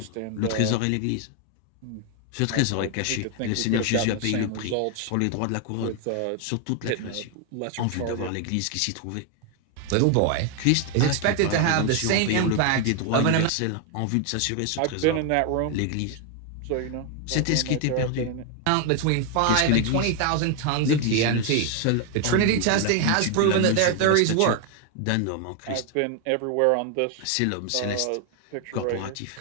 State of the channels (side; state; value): both; different; correlation 0.01